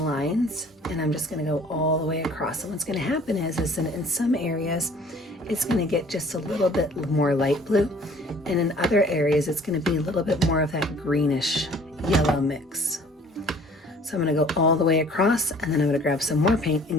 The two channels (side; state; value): both; normal; correlation 0.53